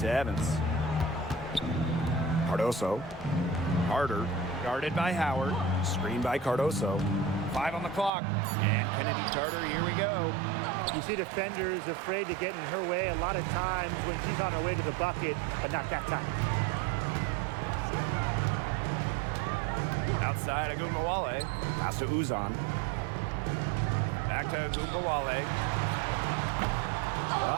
Evans. Cardoso. Carter. Guarded by Howard. Screen by Cardoso. 5 on the clock. And Kennedy Tarter, here we go. You see defenders afraid to get in her way a lot of times when she's on her way to the bucket, but not that time. Outside Agumbawale. Pass to Uzan. Back to Agumbawale.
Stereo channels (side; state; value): left; drops out; at 8.1 s